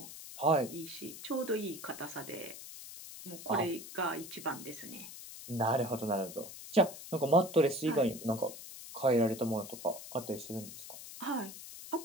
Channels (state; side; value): noise; left; hiss, 12 dB below the sound